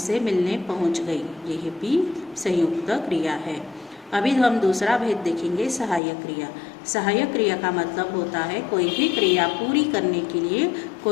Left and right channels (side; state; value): right; drops out; at 6.0 s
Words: मिलने पहुँच गई, यह भी संयुक्त क्रिया है। अभी हम दूसरा भेद देखेंगे, सहायक क्रिया। सहायक क्रिया का मतलब होता है कोई भी क्रिया पूरी करने के लिए